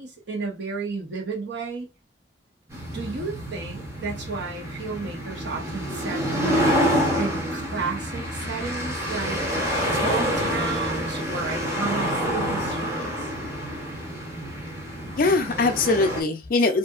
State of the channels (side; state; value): both; normal; correlation 0.34